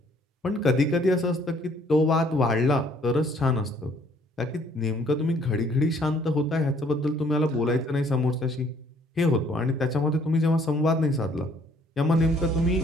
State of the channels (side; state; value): both; normal; correlation 0.62